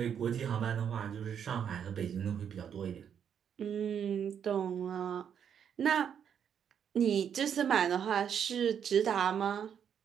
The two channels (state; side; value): quieter; left; 8.2 dB